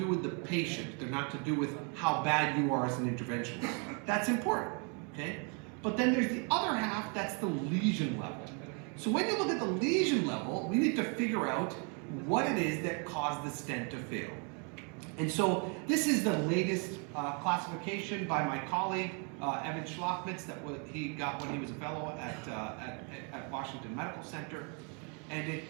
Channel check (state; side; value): quieter; left; 36.7 dB